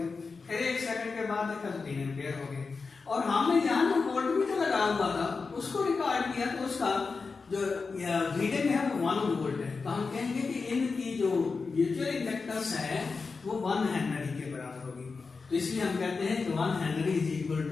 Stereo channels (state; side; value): quieter; right; 4.6 dB